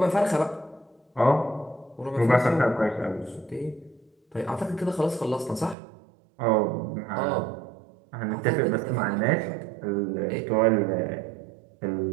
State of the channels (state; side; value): drops out; left; at 5.8 s